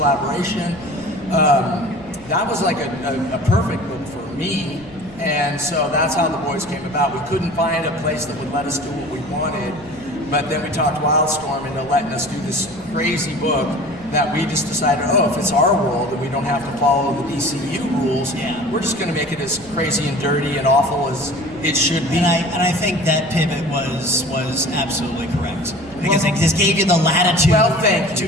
that was like a perfect book for me. And so that's how the boys came about. We couldn't find a place that would let us do what we wanted, but then we talked Wildstorm into letting us do this crazy book that we just decided, if it's our world and we don't have to follow the DCU rules, we're just going to make it as crazy and dirty and awful as it should be. And I think that pivot was absolutely correct because it just gave you the latitude to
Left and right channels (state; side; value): noise; right; rumble, 22 dB below the sound